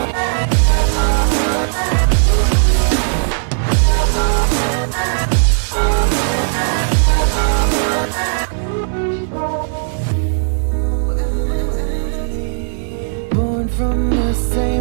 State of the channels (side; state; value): left; silent; 69 dB below the other